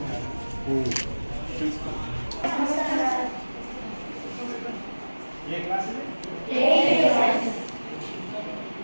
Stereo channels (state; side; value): inverted; both; correlation -1.00